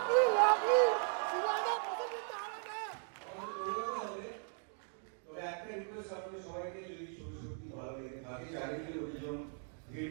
লাভলি তবে একটা রিকোয়েস্ট আপনাদের সবাইকে, যদি ছবি সত্যি ভালো লেগে থাকে, চারিদিকে লোকজন ভিড়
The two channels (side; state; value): left; silent; 53 dB below the other